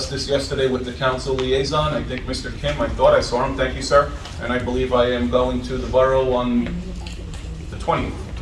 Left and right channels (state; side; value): identical; both; correlation 1.00